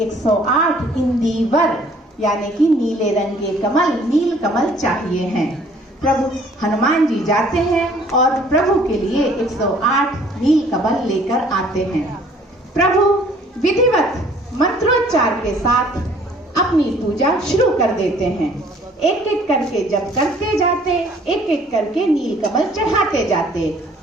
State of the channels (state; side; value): normal; both; correlation 0.57